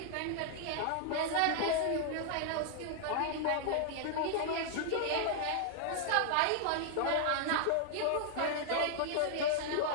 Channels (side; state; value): both; different; correlation 0.00